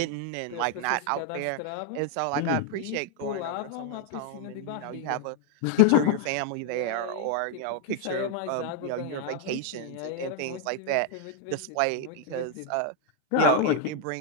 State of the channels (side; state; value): both; different; correlation 0.00